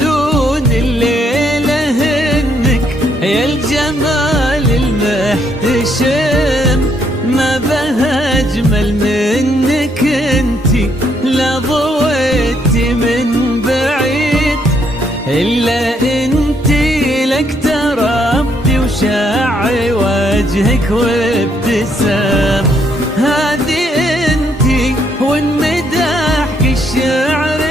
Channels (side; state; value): both; normal; correlation 0.72